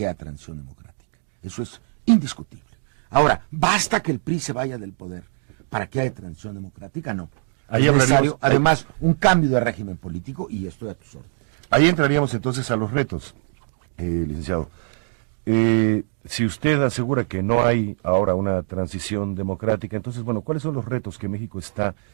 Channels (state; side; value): silent; left; digital silence